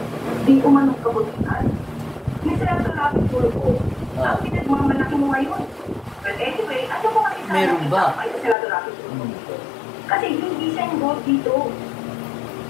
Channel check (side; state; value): right; drops out; at 8.6 s